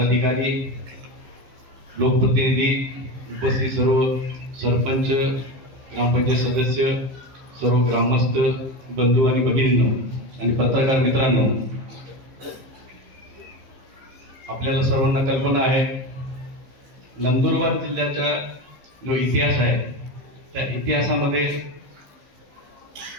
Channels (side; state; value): left; late; 15 ms